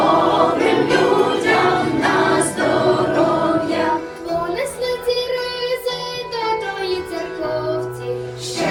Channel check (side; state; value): both; identical; correlation 1.00